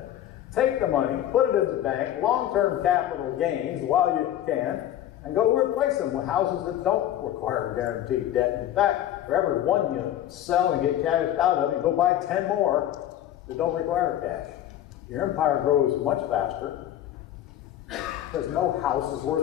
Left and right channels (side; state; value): right; quieter; 12.0 dB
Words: Take the money, put it in the bank, long-term capital gains while you can, and go replace them with houses that don't require guaranteed debt. In fact, for every one you sell and get cashed out of, you go buy 10 more that don't require cash. Your empire grows much faster because no house is